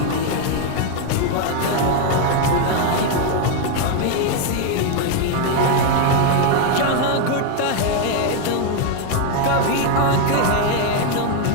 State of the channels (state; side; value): different; both; correlation 0.01